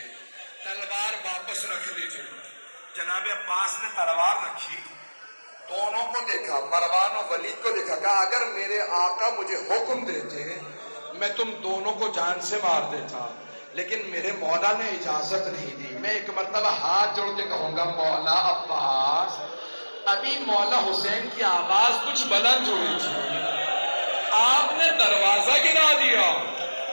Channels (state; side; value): inverted; both; correlation -1.00